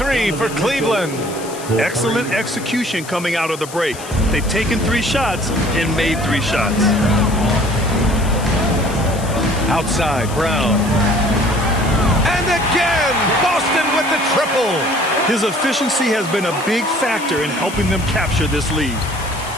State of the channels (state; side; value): noise; left; hiss, 14 dB below the sound